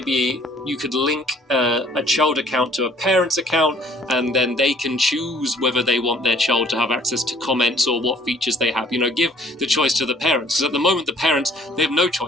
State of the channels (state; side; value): normal; both; correlation 0.57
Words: you could link a child account to a parent's account, and then they can choose whether they want their child to have access to comments or what features they have. Give the choice to the parents, because at the moment the parents, they have no